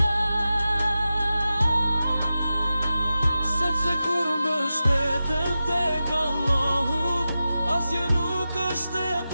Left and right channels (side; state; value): both; inverted; correlation -0.92